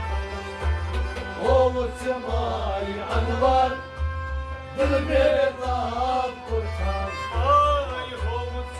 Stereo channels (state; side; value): identical; both; correlation 1.00